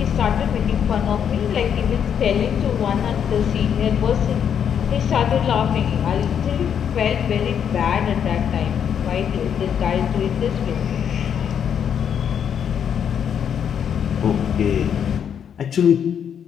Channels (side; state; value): right; quieter; 8.2 dB